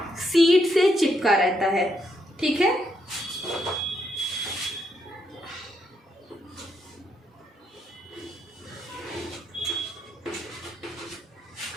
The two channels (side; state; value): both; normal; correlation 0.77